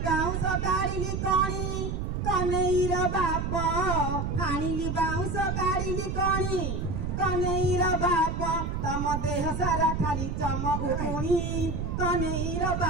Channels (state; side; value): noise; right; rumble, 2 dB below the sound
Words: बाउस काढिली कणी कनेर बाप हानिली बाउस काढिली कणी कनेर बाप तम देह सारा खाली चमक उकुणी कनेर